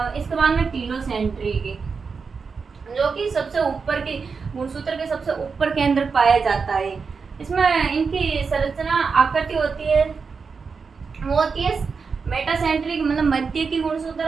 इसके बाद में टीलोसेंट्रिक की, जो कि सबसे ऊपर की गुणसूत्र के सबसे ऊपर केंद्र पाया जाता है। इसमें इनकी संरचना आकृति होती है, वो होती है मेटासेंट्रिक, मतलब मध्य की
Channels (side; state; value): left; quieter; 5.2 dB